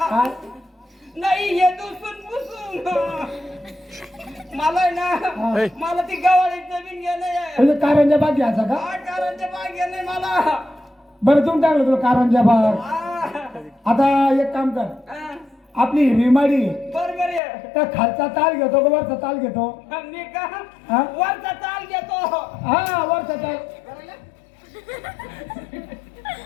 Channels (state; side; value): drops out; right; at 17.4 s